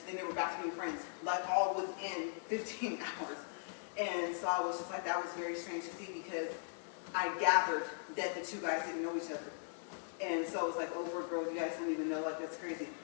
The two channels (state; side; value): silent; right; digital silence